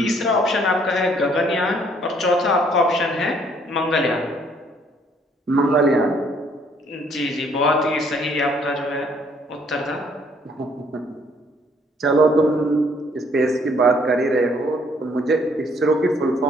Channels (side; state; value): both; normal; correlation 0.64